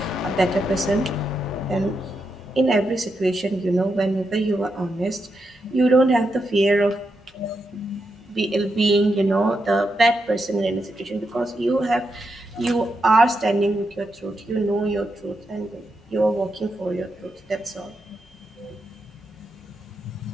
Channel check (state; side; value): normal; both; correlation 0.84